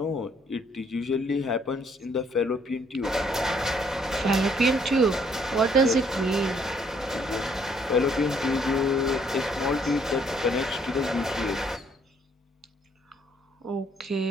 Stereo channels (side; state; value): both; normal; correlation 0.66